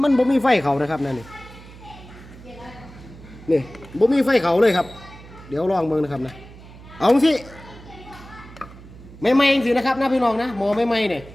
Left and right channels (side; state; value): right; noise; hum, 19 dB below the sound